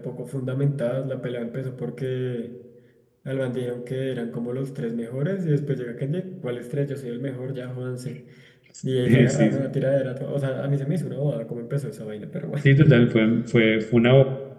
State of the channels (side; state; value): both; identical; correlation 1.00